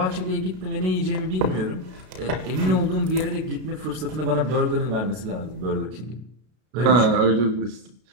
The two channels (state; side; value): late; left; 32 ms